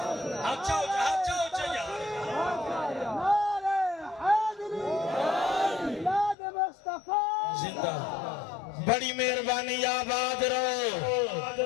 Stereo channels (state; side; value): drops out; right; at 6.4 s